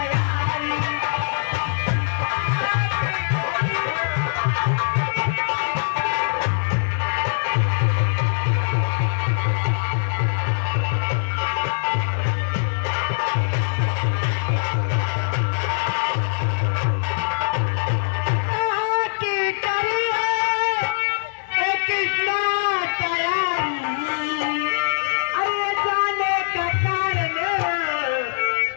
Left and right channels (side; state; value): right; silent; digital silence